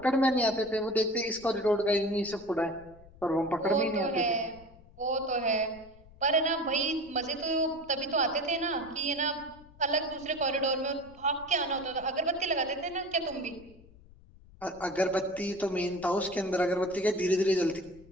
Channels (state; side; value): noise; left; rumble, 23 dB below the sound